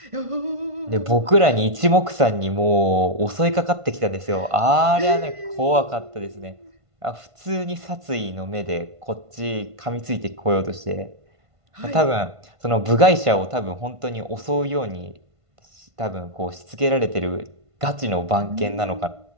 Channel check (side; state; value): left; late; 1.5 ms